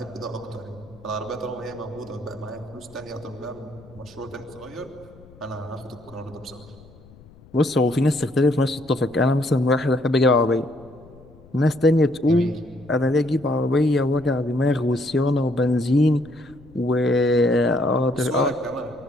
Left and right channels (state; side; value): noise; left; rumble, 23 dB below the sound